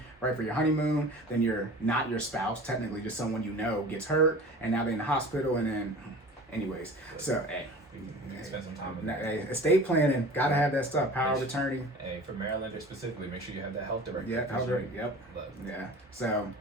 right for your honeymoon. Then you're not your spouse, technically just someone you know gets hurt, and now they're in the hospital, and then, anyways. So, hey. We can spend some time in that. Hey, estate planning, gotta have that stuff. Power of attorney. Hey, for Marylanders specifically, make sure you have that health director. Yeah, health director. Yep. Look. Yeah. So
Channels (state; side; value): normal; both; correlation 0.40